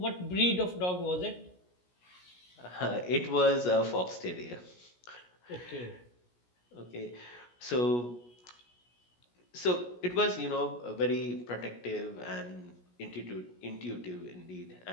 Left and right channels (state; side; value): late; right; 17 ms